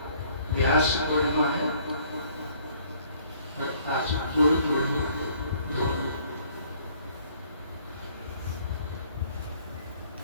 व्यास पूर्णिमा है और आज गुरु पूर्णिमा दोनों।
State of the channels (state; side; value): inverted; both; correlation -0.60